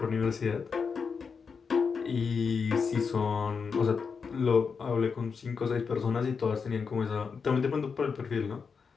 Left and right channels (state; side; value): quieter; right; 5.6 dB